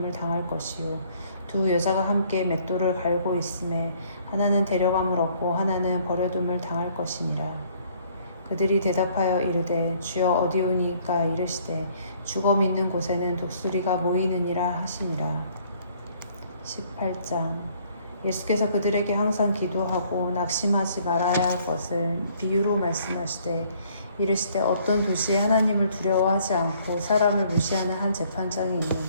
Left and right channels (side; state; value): both; inverted; correlation -0.62